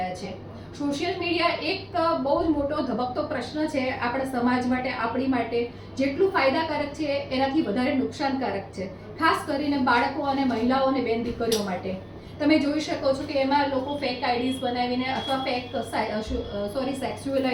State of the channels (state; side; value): identical; both; correlation 1.00